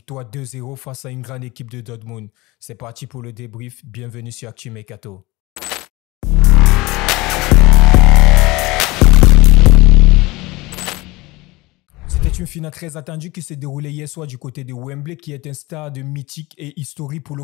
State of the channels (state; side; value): quieter; right; 21.8 dB